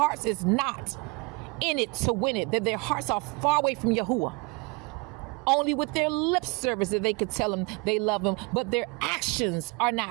is not in it to win it, that their hearts are far away from Yahuwah. Only with their lip service that they could tell him they love him, but their actions are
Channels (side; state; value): left; quieter; 28.9 dB